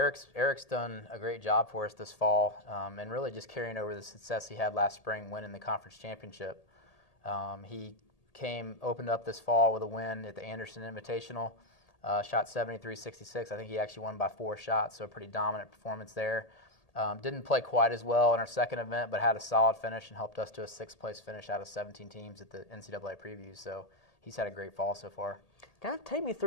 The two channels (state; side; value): late; right; 1.8 ms